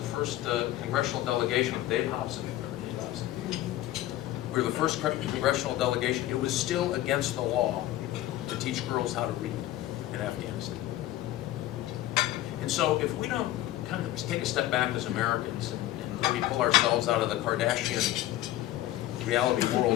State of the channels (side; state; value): right; quieter; 14.8 dB